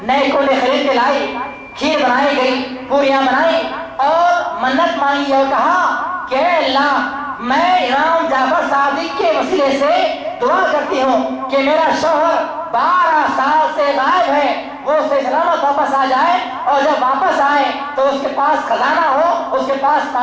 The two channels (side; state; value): both; identical; correlation 1.00